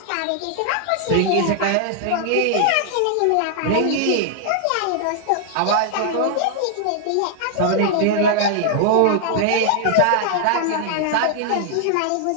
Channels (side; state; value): both; different; correlation 0.00